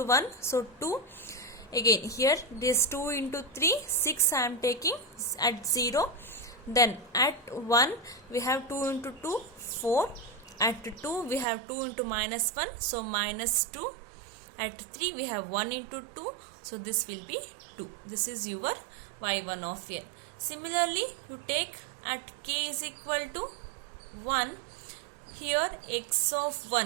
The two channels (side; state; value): left; drops out; at 11.5 s